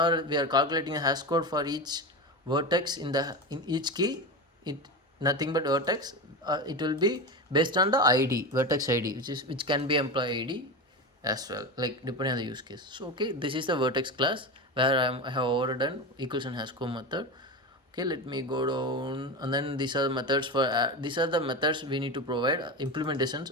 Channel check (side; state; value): both; normal; correlation 0.21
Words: we are calculating a hash code for each vertex in each key, it nothing but vertex. It will be based on the ID, vertex ID, which can be employee ID as well, like depending on the use case. So okay, this is the vertex class where I have overdone equals and hash code method. Okay, let me go down, and then these are the methods for these are the methods we need to provide